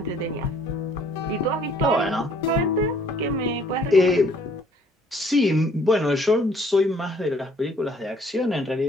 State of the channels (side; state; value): both; normal; correlation 0.60